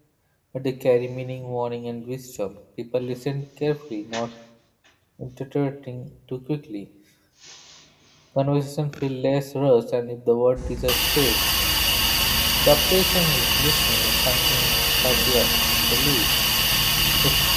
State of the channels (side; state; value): both; identical; correlation 1.00